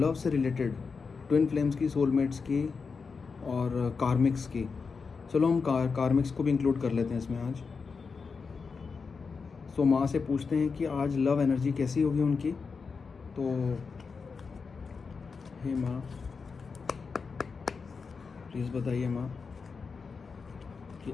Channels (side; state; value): right; quieter; 5.1 dB